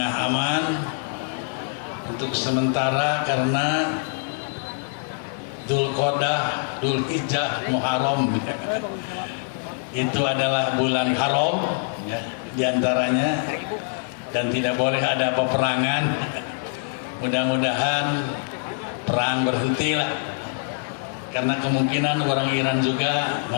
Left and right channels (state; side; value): silent; right; 62 dB below the other